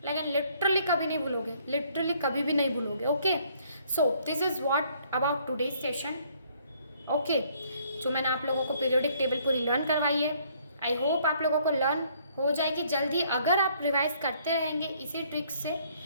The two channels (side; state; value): both; inverted; correlation -0.64